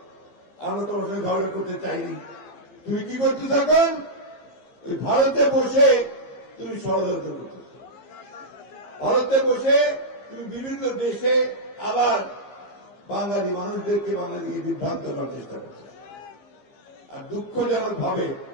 আমরা তোমার সঙ্গে ঝগড়া করতে চাইনি। তুমি কি করতে এখন? ওই ভারতে বসে তুমি ষড়যন্ত্র করতেছ। ভারতে বসে তুমি বিভিন্ন দেশে আবার বাঙালি মানুষদেরকে বাঙালিকে বিভ্রান্ত করার চেষ্টা করতেছ। আর দুঃখজনক ভাবে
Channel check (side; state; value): right; late; 15 ms